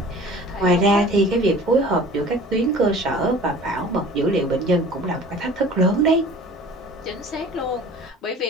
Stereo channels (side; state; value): both; normal; correlation 0.44